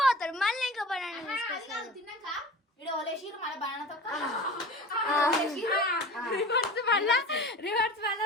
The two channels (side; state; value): both; normal; correlation 0.36